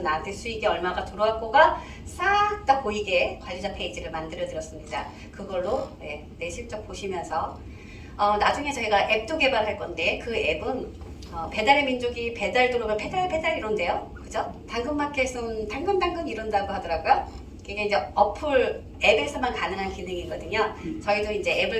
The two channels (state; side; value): identical; both; correlation 1.00